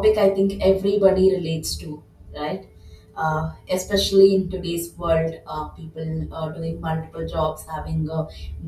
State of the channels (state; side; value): identical; both; correlation 1.00